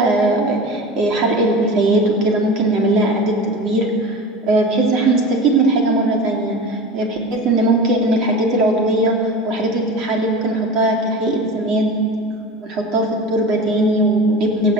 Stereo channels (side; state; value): both; normal; correlation 0.32